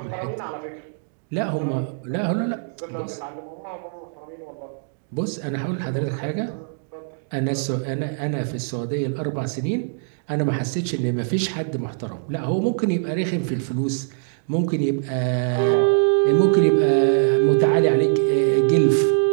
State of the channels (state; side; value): silent; left; digital silence